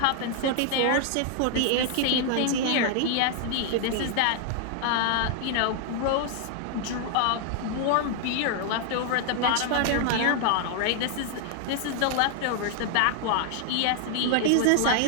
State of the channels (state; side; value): different; both; correlation 0.00